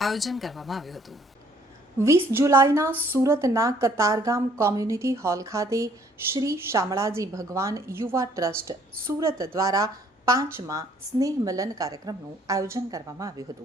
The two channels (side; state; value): both; normal; correlation 0.62